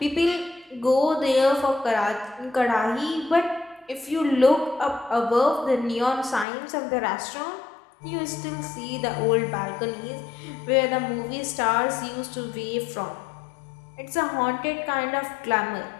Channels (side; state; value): right; drops out; at 6.5 s